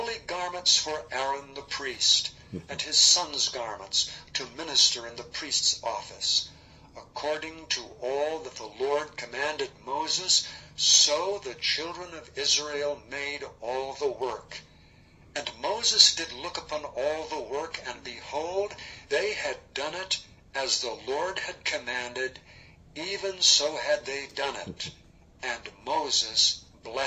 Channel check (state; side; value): identical; both; correlation 1.00